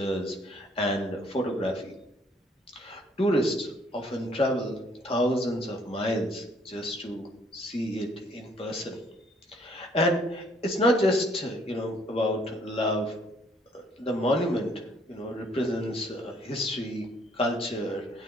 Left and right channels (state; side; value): normal; both; correlation 0.64